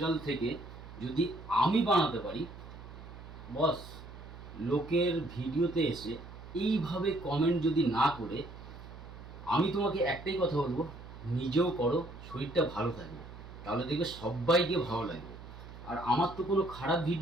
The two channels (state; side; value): noise; right; hum, 15 dB below the sound